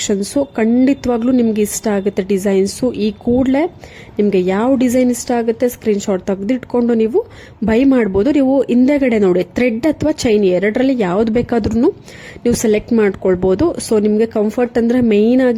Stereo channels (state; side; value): identical; both; correlation 1.00